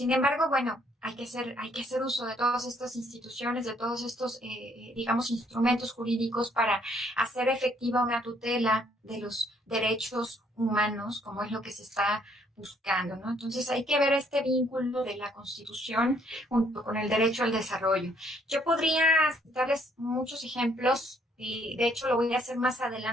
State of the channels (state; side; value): normal; both; correlation 0.66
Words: embargo, bueno, hay que hacer uso de todas estas instituciones, de todos estos, digamos, instrumentos jurídicos para hacer efectiva una tutela de los derechos humanos, como es lo que se está buscando, ¿no? Entonces hay que ver este vínculo de la Constitución junto con el derecho al desarrollo. Yo podría darles muchos ejemplos, y de hecho lo voy a hacer más